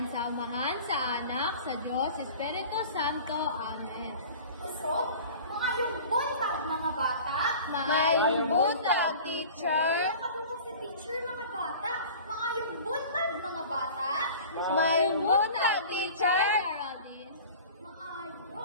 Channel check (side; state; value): both; inverted; correlation -0.41